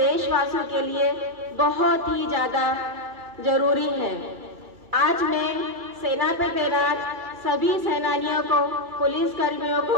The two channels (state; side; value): late; left; 2.6 ms